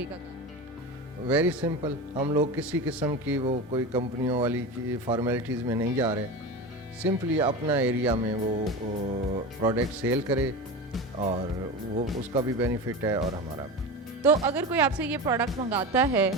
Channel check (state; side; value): normal; both; correlation 0.26